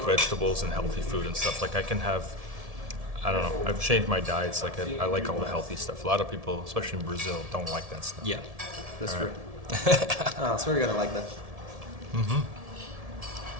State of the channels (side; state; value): left; late; 1.7 ms